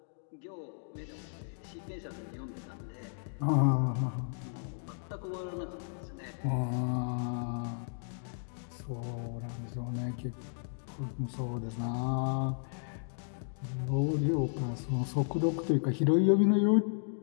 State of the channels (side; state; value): right; silent; digital silence